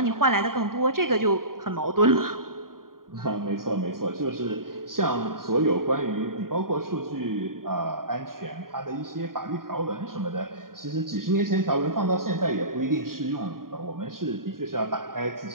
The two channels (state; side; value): late; left; 0.91 ms